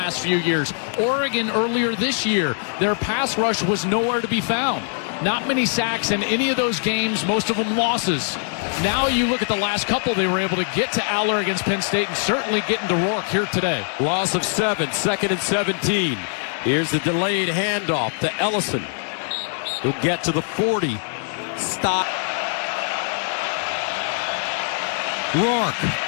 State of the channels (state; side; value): silent; right; digital silence